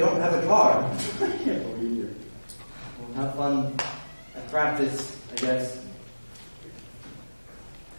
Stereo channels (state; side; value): inverted; both; correlation -1.00